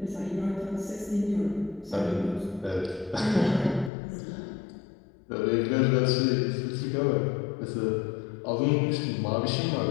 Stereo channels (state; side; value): drops out; right; at 3.9 s